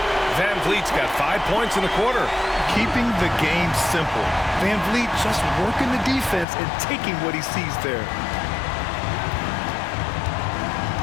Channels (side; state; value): right; drops out; at 6.5 s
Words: Van Vliet's got 5 points in the quarter. Keeping the game simple. Van Vliet just working the defense and taking what he sees there.